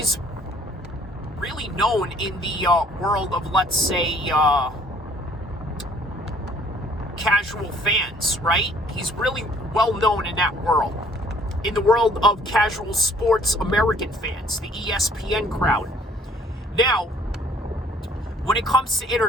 really known in the world of, let's say, casual fans, right? He's really well known in that world. In the world of casual sports American fans, the ESPN crowd. Now, when it comes to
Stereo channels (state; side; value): normal; both; correlation 0.58